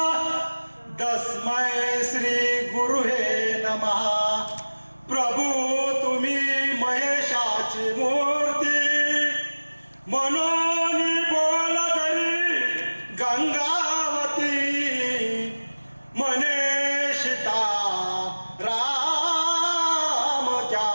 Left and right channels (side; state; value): both; inverted; correlation -1.00